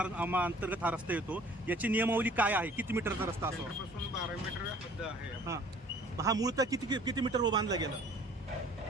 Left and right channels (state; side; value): normal; both; correlation 0.53